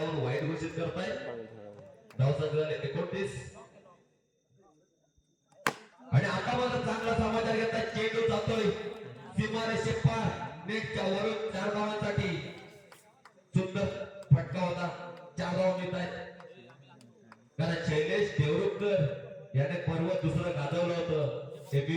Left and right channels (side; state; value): both; identical; correlation 1.00